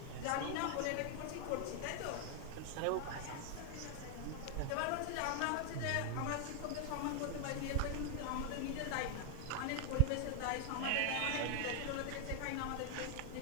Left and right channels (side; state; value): both; different; correlation 0.00